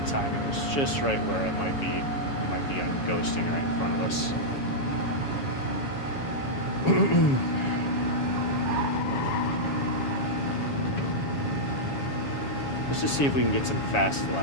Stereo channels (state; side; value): late; right; 7.2 ms